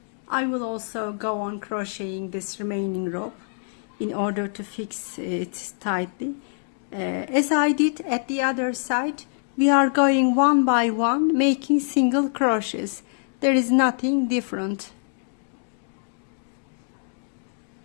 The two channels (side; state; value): right; silent; digital silence